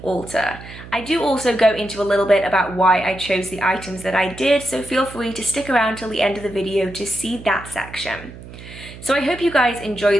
altar. I do also go into a little bit about why I chose the items that I did, so feel free to stick around till the end of the video to see that section. So I hope you guys enjoy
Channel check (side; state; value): right; noise; hum, 15 dB below the sound